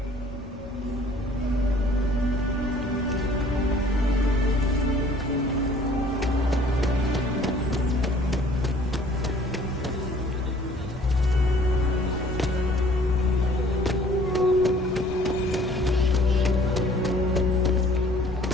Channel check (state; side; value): normal; both; correlation 0.55